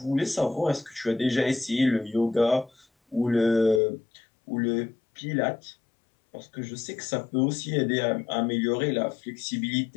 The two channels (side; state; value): right; drops out; at 3.8 s